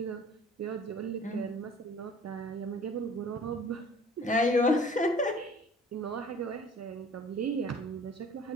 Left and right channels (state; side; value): normal; both; correlation 0.49